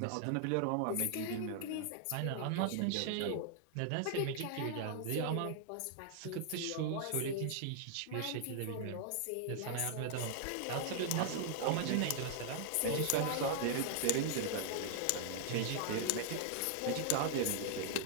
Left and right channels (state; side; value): different; both; correlation 0.00